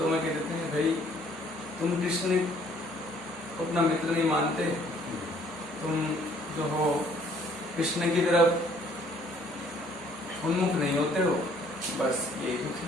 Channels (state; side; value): normal; both; correlation 0.60